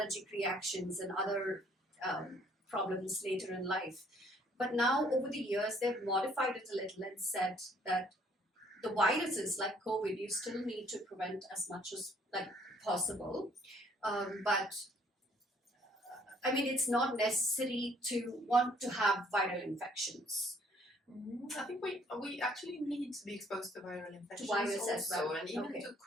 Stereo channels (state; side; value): normal; both; correlation 0.62